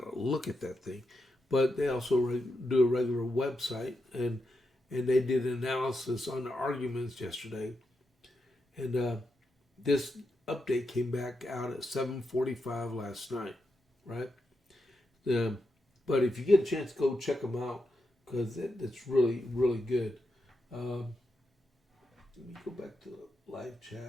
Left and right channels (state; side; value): normal; both; correlation 0.86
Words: to look at that thing. But they also do a regular website, and they did an analysis on the arguments yesterday. And this update came back out at 7:45 last night, right? But if you get a chance, go check them out, because it's really, really good. Let me go back to the live